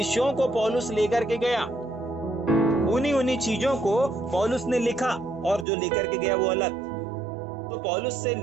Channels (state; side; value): drops out; left; at 5.7 s